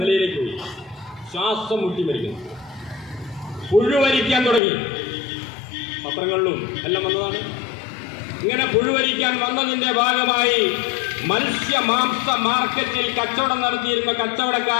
നിലയിലേക്ക് പോയി. ശ്വാസം മുട്ടി മരിക്കുന്നു. പുഴുവരിക്കാൻ തുടങ്ങി. പത്രങ്ങളിലും എല്ലാം വന്നതാണ്. ഇങ്ങനെ പുഴുവരിക്കാൻ വന്നതിന്റെ ഭാഗമായി മത്സ്യ മാംസ മാർക്കറ്റിൽ കച്ചവടം നടത്തിയിരുന്ന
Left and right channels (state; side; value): drops out; right; at 4.6 s